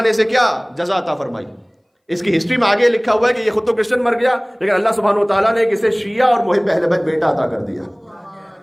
نے اسے کیا جزا عطا فرمائی. اس کی ہسٹری میں آگے لکھا ہوا ہے کہ یہ خود تو کرسچن مر گیا, لیکن اللہ سبحانہ و تعالیٰ نے اسے شیعہ اور محب اہل بیت بیٹا عطا کر دیا.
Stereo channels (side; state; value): both; identical; correlation 1.00